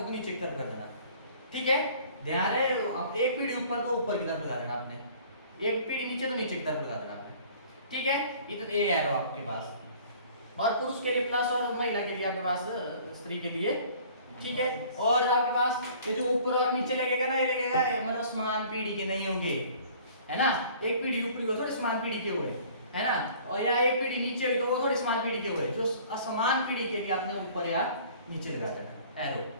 तो नीचे की तरफ कर देना। ठीक है, ध्यान है, एक पीढ़ी ऊपर तो ऊपर की तरफ लगा देना आपने, एक पीढ़ी नीचे तो नीचे की तरफ लगा देना आपने। ठीक है, ये तो ए एरो आपके पास, और पुरुष के लिए प्लस और महिला के लिए आपके पास स्त्री के लिए। ठीक है, और आपके पास ये जो ऊपर और नीचे लगेगा ना, ये लगेगा मतलब समान पीढ़ी के नहीं होंगे, है ना, एक पीढ़ी ऊपरी हो थोड़े समान पीढ़ी के हुए, है ना, और या एक पीढ़ी नीचे हुई तो वो थोड़ी समान पीढ़ी के हुए, जो असमान पीढ़ी के लिए आपने ऊपर या नीचे लगा देना एरो।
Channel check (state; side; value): inverted; both; correlation -0.51